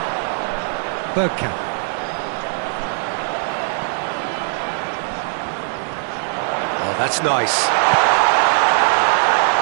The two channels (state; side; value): silent; left; 59 dB below the other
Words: Bergkamp. Oh, that's nice.